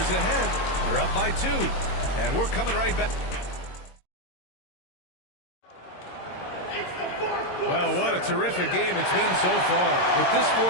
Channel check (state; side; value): late; right; 22 ms